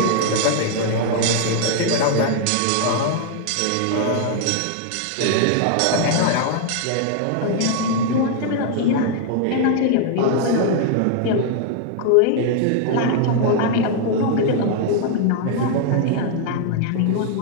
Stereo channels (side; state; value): both; different; correlation 0.00